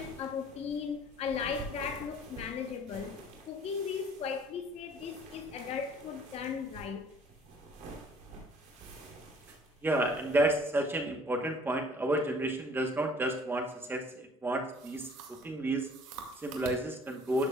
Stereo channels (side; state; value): both; normal; correlation 0.54